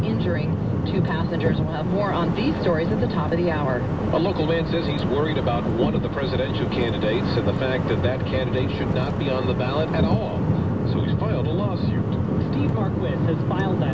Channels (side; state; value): both; identical; correlation 1.00